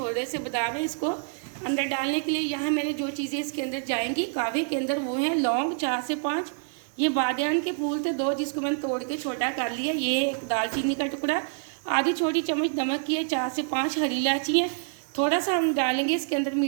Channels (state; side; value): silent; left; 60 dB below the other